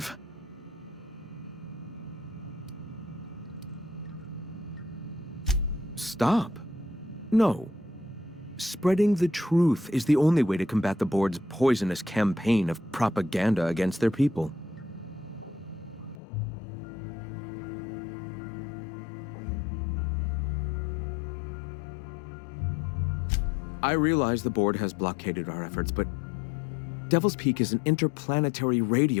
Stop. No. Spreading the truth is the only way to combat the board's poisonous campaign of propaganda against their people. I realize the board has blockaded our efforts, but Devil's Peak is an interplanetary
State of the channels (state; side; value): drops out; right; at 16.2 s